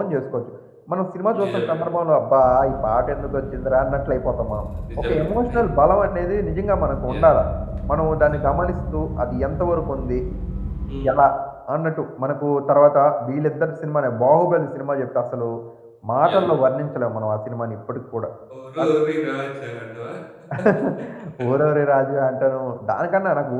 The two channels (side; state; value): both; identical; correlation 1.00